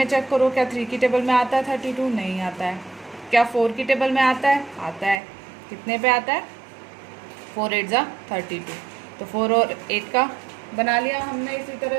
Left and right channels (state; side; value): drops out; left; at 5.2 s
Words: चेक करो, क्या 3 की टेबल में आता है 32, नहीं आता है। क्या 4 की टेबल में आता है, आता है। कितने पे आता है, 4 8 जा 32। तो 4 और 8 का बना लिया हमने इसी तरह